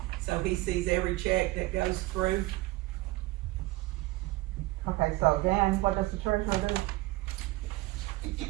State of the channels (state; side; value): quieter; left; 19.6 dB